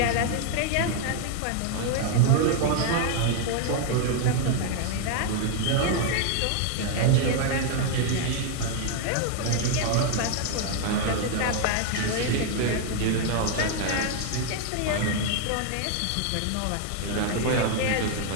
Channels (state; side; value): different; both; correlation 0.00